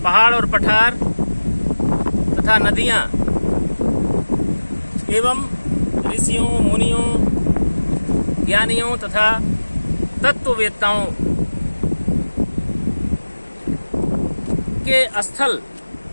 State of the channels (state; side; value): inverted; both; correlation -1.00